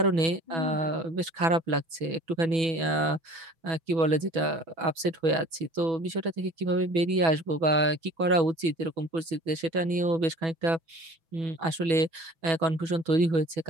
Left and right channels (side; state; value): left; late; 6.1 ms